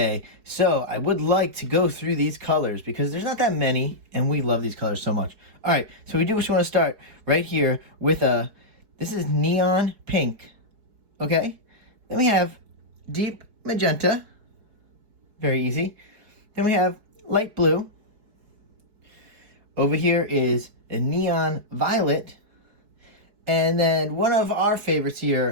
so I would like to go through these colors because there's not that many, and we love these colors so much. All right, so we do just want to start right here with this is neon pink, okay? Then we have deep magenta, very easy. Then we have light blue. Over here is a neon violet. And then one of our favorites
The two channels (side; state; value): left; late; 4.7 ms